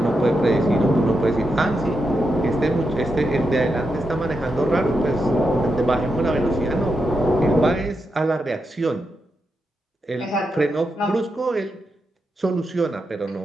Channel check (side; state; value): both; normal; correlation 0.85